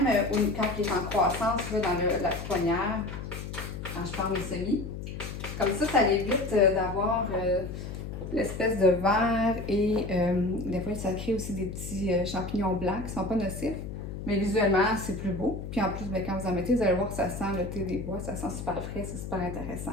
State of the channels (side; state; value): left; noise; hum, 8 dB below the sound